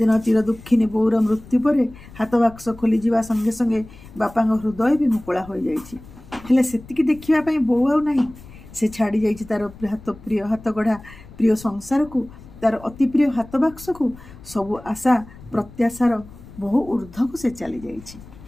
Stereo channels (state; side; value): noise; left; rumble, 19 dB below the sound